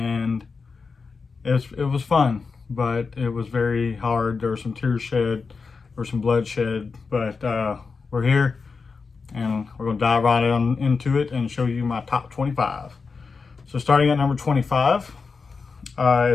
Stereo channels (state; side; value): quieter; right; 4.8 dB